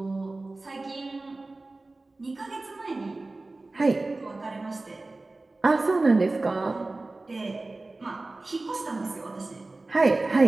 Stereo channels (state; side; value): quieter; left; 3.1 dB